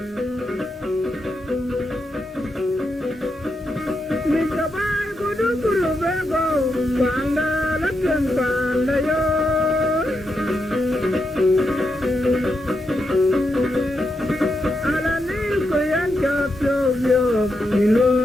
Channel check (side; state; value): both; normal; correlation 0.84